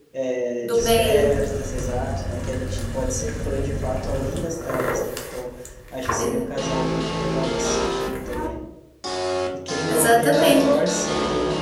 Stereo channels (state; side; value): identical; both; correlation 1.00